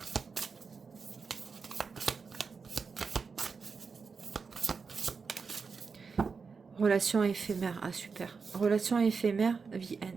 Relation éphémère. Ah, super. Relation éphémère, the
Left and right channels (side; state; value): left; quieter; 5.2 dB